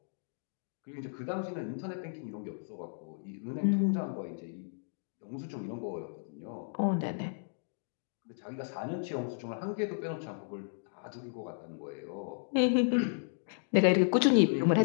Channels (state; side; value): silent; right; digital silence